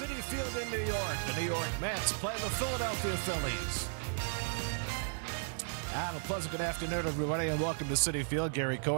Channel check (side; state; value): left; silent; 55 dB below the other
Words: Field in New York, the New York Mets play the Philadelphia Phillies. And a pleasant good afternoon, everybody, and welcome to Citi Field. Gary